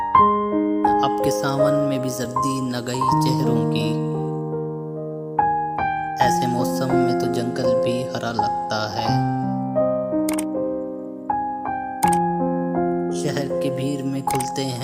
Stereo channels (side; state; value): both; identical; correlation 1.00